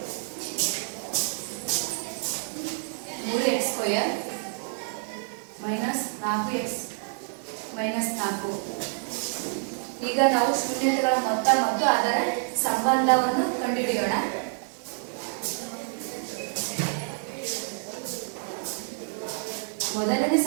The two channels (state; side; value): silent; left; 59 dB below the other